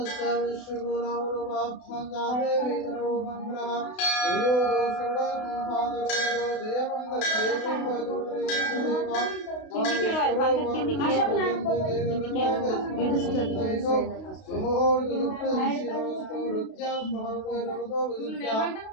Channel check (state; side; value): late; right; 32 ms